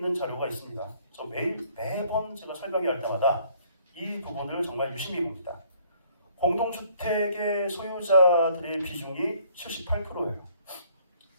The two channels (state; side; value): inverted; both; correlation -0.61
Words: 자료가 있습니다. 저 매번 제가 설명할 때마다 이 부분을 정말 유심히 봅니다. 공동주택의 소유자들의 비중이 78%예요.